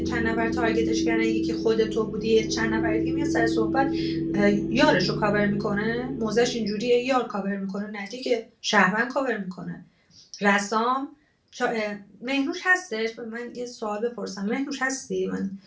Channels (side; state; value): both; identical; correlation 1.00